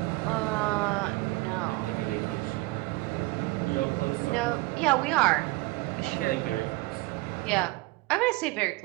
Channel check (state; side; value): quieter; left; 22.2 dB